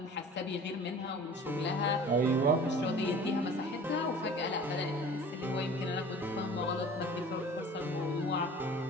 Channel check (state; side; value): normal; both; correlation 0.43